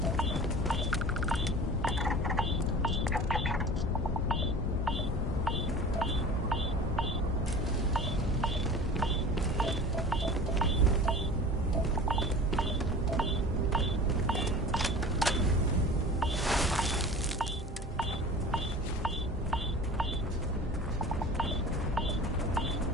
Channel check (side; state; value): both; normal; correlation 0.39